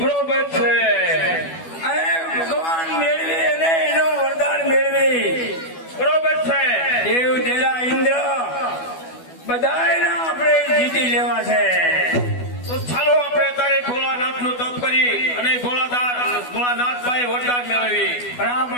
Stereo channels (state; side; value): late; right; 12 ms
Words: છે. અને ભગવાન મેળવી અને એનું વરદાન મેળવી. બરોબર છે. દેવ દેરા ઇન્દ્ર બધાયના આપણે જીતી લેવા છે. તો ચાલો આપણે તારે ભોળાનાથ નું તપ કરી અને ભોળાનાથ ભાઈ વરદાન મેળવી.